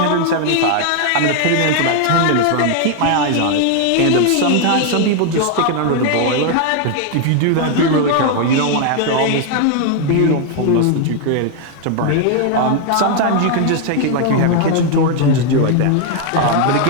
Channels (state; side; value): different; both; correlation 0.00